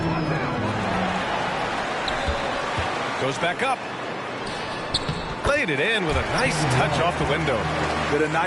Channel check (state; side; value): identical; both; correlation 1.00